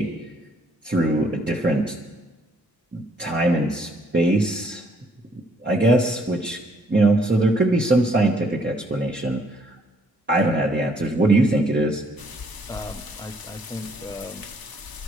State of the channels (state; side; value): normal; both; correlation 0.66